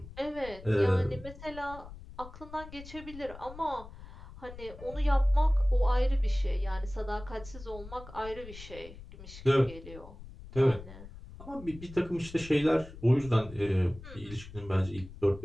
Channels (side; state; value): left; noise; rumble, 15 dB below the sound